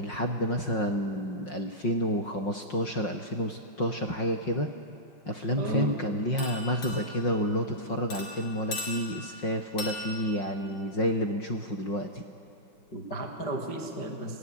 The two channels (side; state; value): right; late; 5.7 ms